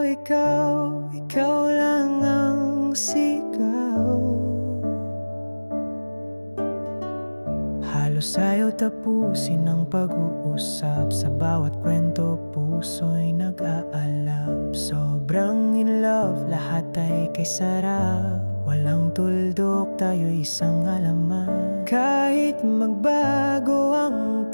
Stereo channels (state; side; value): inverted; both; correlation -1.00